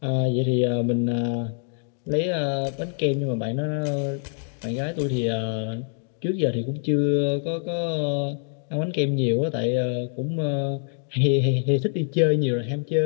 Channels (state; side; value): silent; right; 62 dB below the other